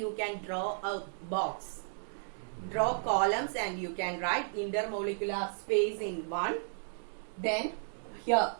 can draw a box, draw columns, and you can write intermolecular space in 1. Then here,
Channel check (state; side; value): silent; left; digital silence